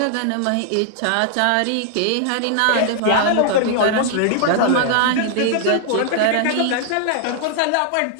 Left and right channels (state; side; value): different; both; correlation -0.01